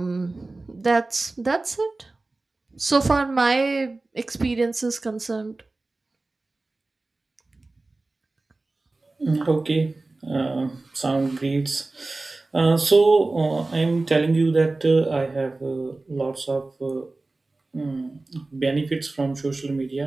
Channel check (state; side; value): quieter; left; 3.2 dB